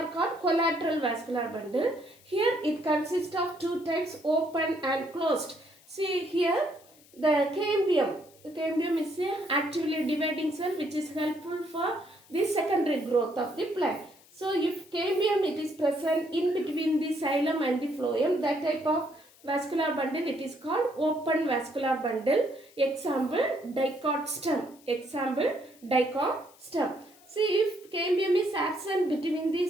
called collateral vascular bundle. Here it consists of two types, open and closed. See here, the cambium. The cambium is an actively dividing cell which is helpful for the secondary growth of the plant. So, if cambium it is present in between the xylem and the phloem, that type of vascular bundle it is called open vascular bundle. Example, dicot stem. Example, dicot stem. See, if cambium is absent between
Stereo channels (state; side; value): noise; left; hiss, 27 dB below the sound